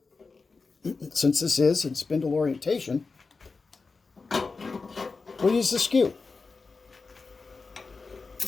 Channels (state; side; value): quieter; right; 4.3 dB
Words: since this is in spindle orientation, we'll use the skew.